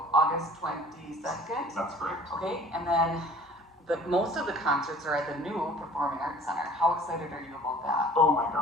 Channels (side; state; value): both; normal; correlation 0.50